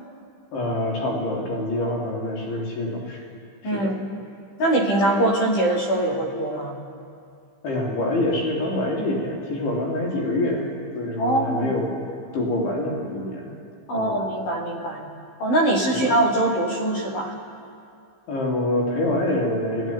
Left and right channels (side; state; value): right; late; 15 ms